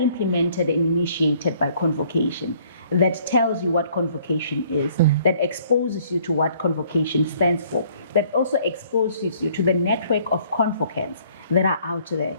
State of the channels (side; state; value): both; inverted; correlation -0.60